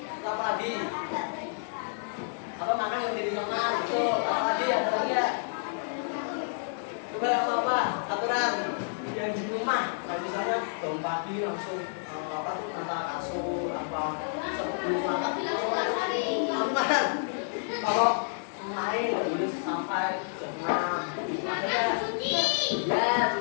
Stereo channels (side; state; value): right; silent; digital silence